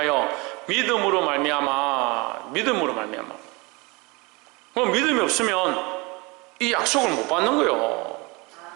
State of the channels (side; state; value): left; quieter; 26.3 dB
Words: 믿음으로 말미암아. 그럼 믿음이 없으면 이 약속을 못 받는 거예요.